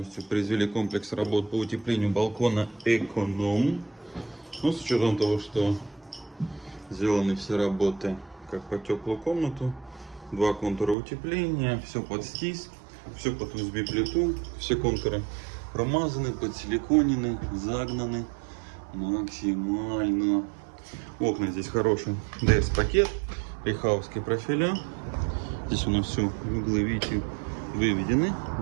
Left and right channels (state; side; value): drops out; left; at 11.0 s